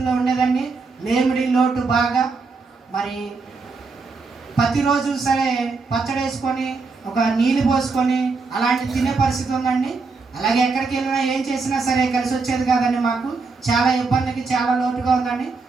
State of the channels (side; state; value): left; quieter; 4.3 dB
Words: ఉండేదండి, లేమిడి లోటు బాగా. మరి ప్రతిరోజు సరే పచ్చడి వేసుకొని ఒక నీళ్ళు పోసుకొని అలాంటి తినే పరిస్థితి ఉందండి. అలాగే ఎక్కడికి వెళ్ళినా ఏం చేసినా సరే కలిసి వచ్చేది కాదండి మాకు. చాలా ఇబ్బందికి చాలా లోటుగా ఉందండి.